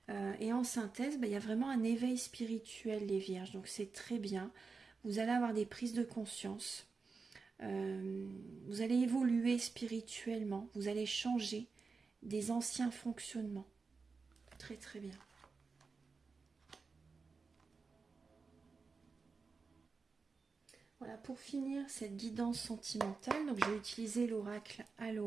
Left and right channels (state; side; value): quieter; left; 4.6 dB